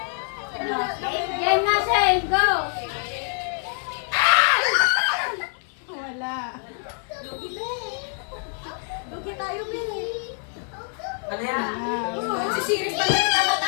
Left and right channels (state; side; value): silent; right; 55 dB below the other